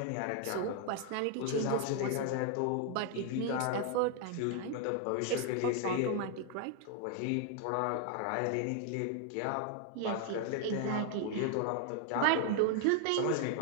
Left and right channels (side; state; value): both; different; correlation 0.00